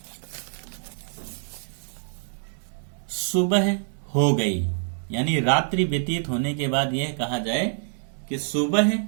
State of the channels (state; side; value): silent; left; digital silence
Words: सुबह हो गई, यानी रात्रि व्यतीत होने के बाद यह कहा जाए कि सुबह